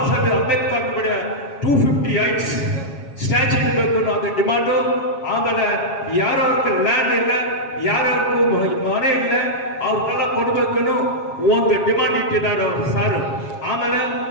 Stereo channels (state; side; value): late; right; 7.3 ms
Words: ಸಾಹೇಬ್ ಅಂಬೇಡ್ಕರ್ ಬಡ 258 ಸ್ಟ್ಯಾಚ್ಯೂ ಇರಬೇಕು ಅನ್ನೋ ಅದು ಡಿಮಾಂಡು. ಆಮೇಲೆ ಯಾರ್ಯಾವ್ರಿಗೆ ಲ್ಯಾಂಡ್ ಇಲ್ಲ, ಯಾರ್ಯಾರಿಗೂ ಮನೆ ಇಲ್ಲ, ಅವ್ರಿಗೆಲ್ಲ ಕೊಡಬೇಕು ಒಂದು ಡಿಮಾಂಡ್ ಇಟ್ಟಿದ್ದಾರೆ ಅವರು ಸರ್. ಆಮೇಲೆ